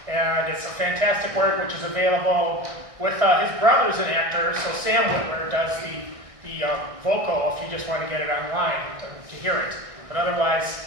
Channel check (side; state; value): left; late; 1.6 ms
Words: and it's a fantastic work which is available with his brother's an actor, so Sam Whitwer does the vocal if you just want to get it online to hear it. But otherwise,